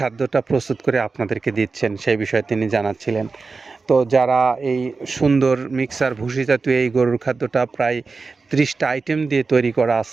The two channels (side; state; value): left; quieter; 4.3 dB